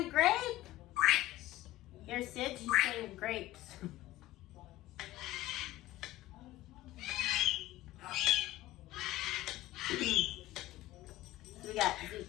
grape? Here, Sid, she's saying grapes. We got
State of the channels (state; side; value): quieter; right; 15.9 dB